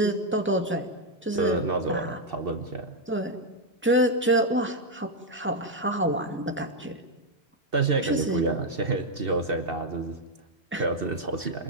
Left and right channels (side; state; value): both; normal; correlation 0.01